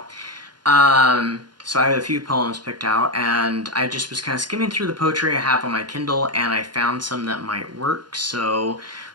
So I have a few poems picked out, and I just was kind of skimming through the poetry I have on my Kindle, and I found some that might work, so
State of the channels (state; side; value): late; left; 0.71 ms